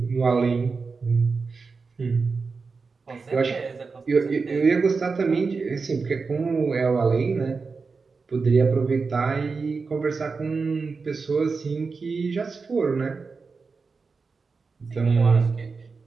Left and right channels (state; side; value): quieter; left; 4.6 dB